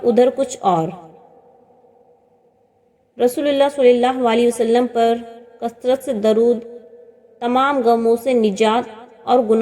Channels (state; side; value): identical; both; correlation 1.00